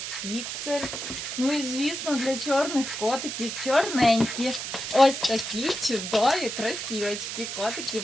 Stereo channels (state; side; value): noise; right; hiss, 6 dB below the sound